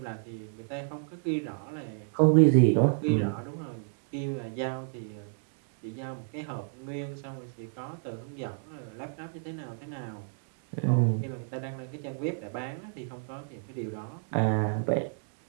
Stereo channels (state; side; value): silent; left; 57 dB below the other